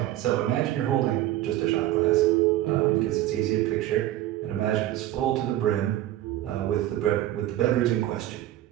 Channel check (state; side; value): quieter; left; 14.1 dB